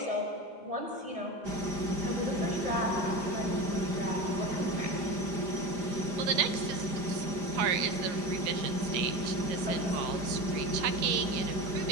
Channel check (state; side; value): late; left; 5.0 ms